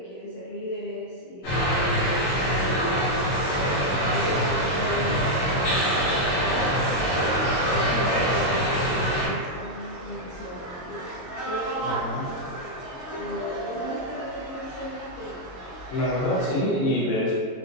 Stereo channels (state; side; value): late; right; 22 ms